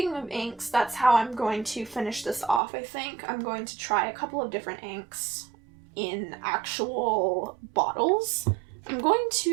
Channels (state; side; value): drops out; left; at 2.6 s